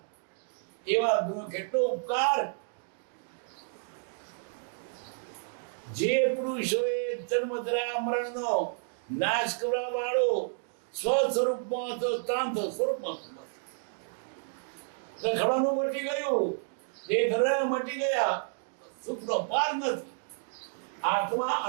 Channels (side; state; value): left; silent; digital silence